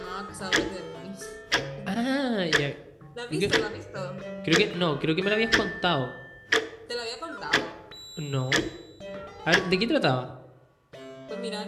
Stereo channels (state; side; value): identical; both; correlation 1.00